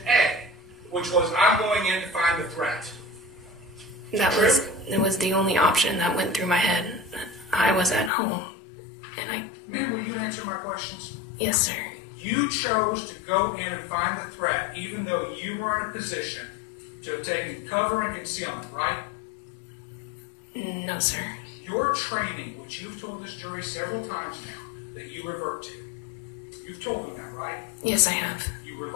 A, which was, I'm going in to find the threat. It was the only option that went through my head. I was at home, and Ma'am, will you answer my questions? Yes, sir. You chose to go in and find the threat, even though you were in a position to have taken cover and concealment, right? No, sir. Your training, which you've told this jury several times now, that you revert to. You've told them that, right? Yes, I have. You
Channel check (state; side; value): drops out; right; at 8.1 s